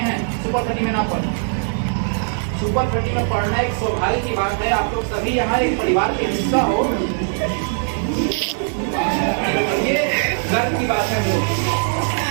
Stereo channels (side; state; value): left; silent; digital silence